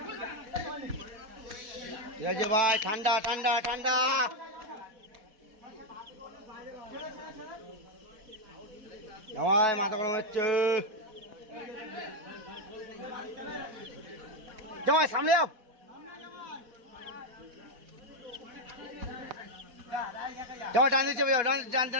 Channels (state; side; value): late; left; 4.1 ms